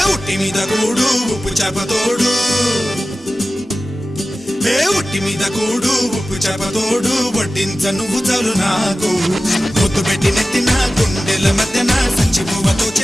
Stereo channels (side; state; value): both; normal; correlation 0.95